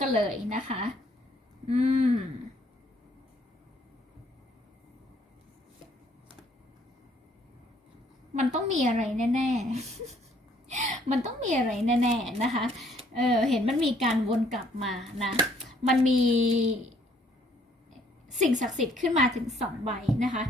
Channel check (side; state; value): both; normal; correlation 0.63